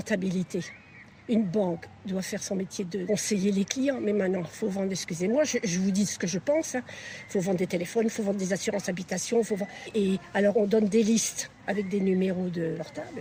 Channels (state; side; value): identical; both; correlation 1.00